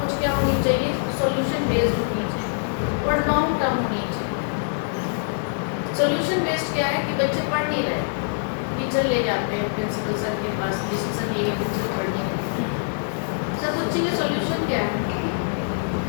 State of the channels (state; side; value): silent; right; digital silence